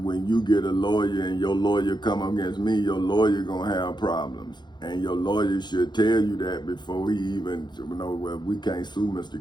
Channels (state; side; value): late; right; 0.21 ms